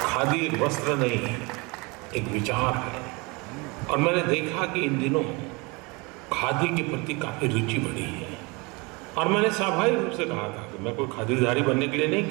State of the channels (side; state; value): left; quieter; 27.2 dB